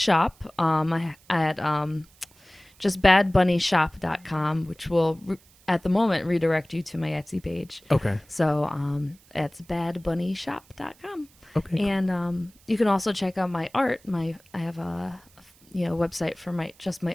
at just badbunnyshop.com, which will at the moment redirect you to my Etsy page. Okay. So it's badbunnyshop.com. Okay. And you can also check out my art. I have a website for my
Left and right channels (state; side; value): noise; right; hiss, 29 dB below the sound